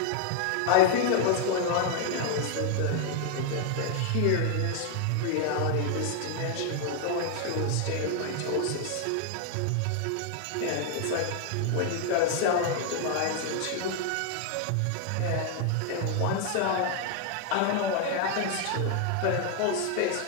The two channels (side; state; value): both; different; correlation 0.00